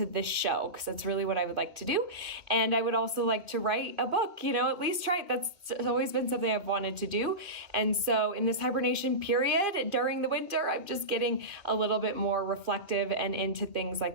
this show, because that's really what I would like to do. And I would also like to write a book, at least try it. That's always been something I've wanted to do. And so in this hibernation period during the winter, I'm just getting a little bit more reflective and into things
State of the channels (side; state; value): left; late; 2.3 ms